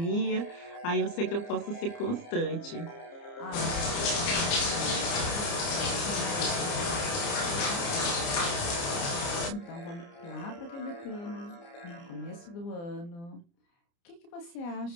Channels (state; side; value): late; right; 29 ms